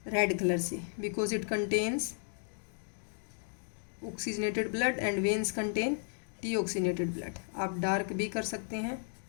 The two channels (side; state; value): right; silent; 55 dB below the other